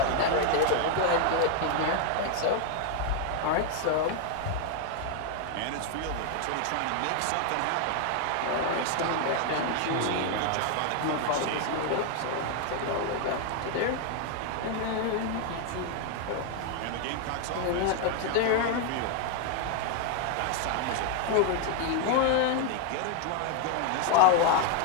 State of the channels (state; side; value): different; both; correlation 0.01